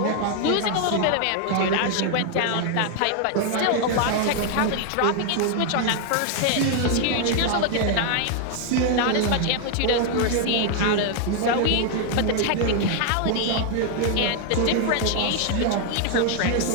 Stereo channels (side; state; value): both; different; correlation 0.00